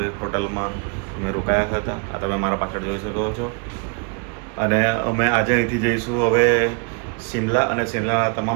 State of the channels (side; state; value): left; quieter; 36.6 dB